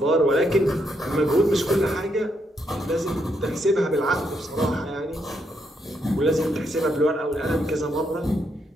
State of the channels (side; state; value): both; normal; correlation 0.78